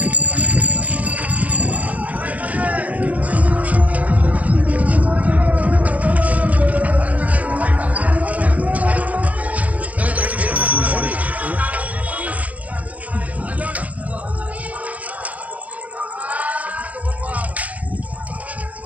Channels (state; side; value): late; left; 0.071 ms